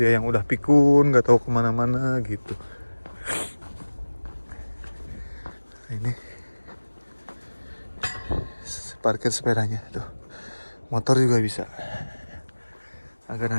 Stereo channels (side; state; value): both; inverted; correlation -1.00